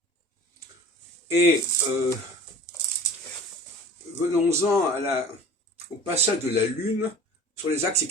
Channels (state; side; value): normal; both; correlation 0.42